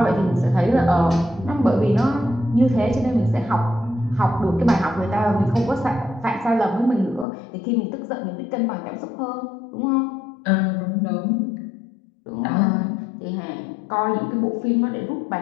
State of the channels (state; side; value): drops out; right; at 7.2 s